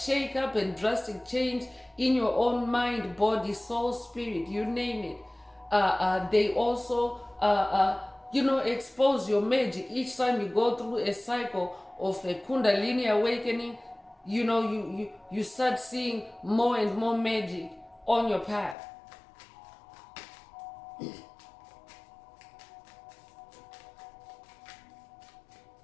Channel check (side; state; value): right; drops out; at 18.8 s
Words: and drastic change in your own mind, body, soul, spirit, you name it. They also, expose your magic. Each time you go through a cycle of a Kundalini awakening, you start seeing more and more magic on your path.